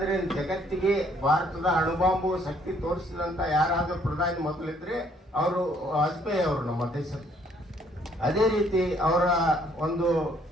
ಜಗತ್ತಿಗೆ ಭಾರತದ ಅಣುಬಾಂಬು ಶಕ್ತಿ ತೋರಿಸಿದಂತ ಯಾರಾದ್ರೂ ಪ್ರಧಾನಿ ಮೊದಲಿದ್ರೆ ಅವರು ವಾಜಪೇಯಿ ಅವರು ನಮ್ಮ ದೇಶದ. ಅದೇ ರೀತಿ ಅವರ ಒಂದು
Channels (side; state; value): both; normal; correlation 0.64